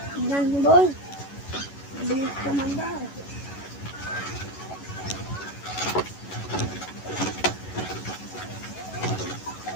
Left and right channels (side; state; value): right; late; 11 ms